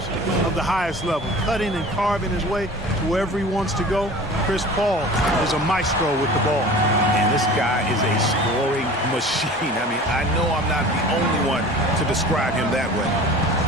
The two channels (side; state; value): both; normal; correlation 0.41